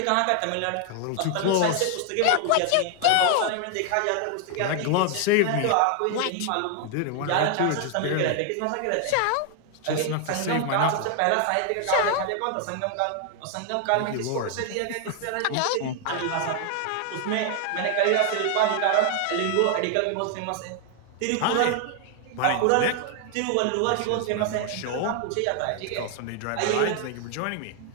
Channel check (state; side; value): different; both; correlation 0.00